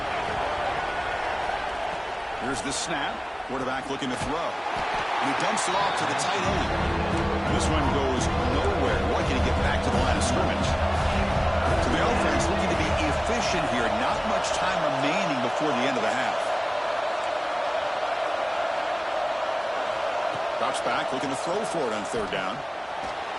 Here's the snap. Quarterback looking to throw. And he dumps it off to the tight end. And this one goes nowhere. Lucky to get back to the line of scrimmage. To the offense, looking to be efficient here. Not much time remaining before the end of the half. Drops back, looking to throw for it on third down.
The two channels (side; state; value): both; identical; correlation 1.00